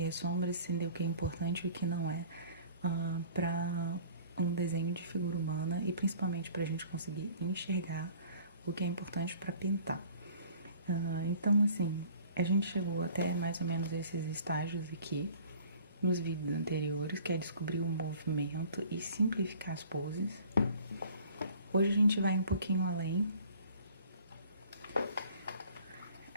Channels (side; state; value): both; inverted; correlation -0.51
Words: as sombras, entender o que é importante e o que não é para um desenho de figura humana e principalmente para a gente conseguir enxergar o que é importante para pintar. Então assim, a gente chegou até mais ou menos esses estágios aqui nos vídeos anteriores, que é descobrir o movimento e simplificar as poses. Hoje a gente vai um pouquinho além.